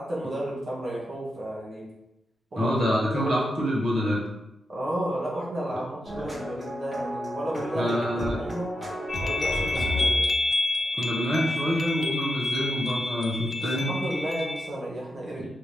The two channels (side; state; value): both; normal; correlation 0.86